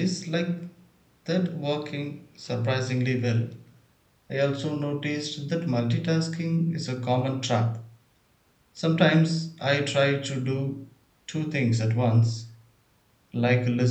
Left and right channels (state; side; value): identical; both; correlation 1.00